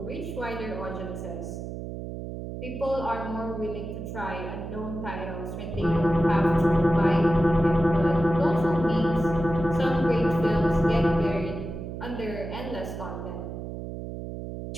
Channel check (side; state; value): right; noise; hum, 8 dB below the sound